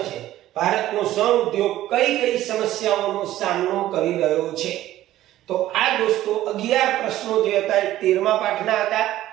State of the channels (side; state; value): left; quieter; 14.2 dB